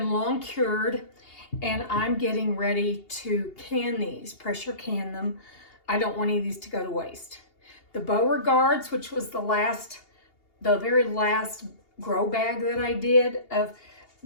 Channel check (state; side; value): late; right; 2.8 ms